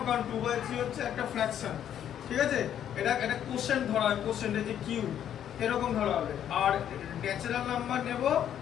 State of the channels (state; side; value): quieter; right; 10.0 dB